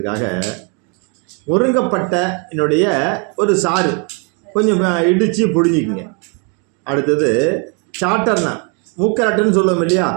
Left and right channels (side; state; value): left; quieter; 36.2 dB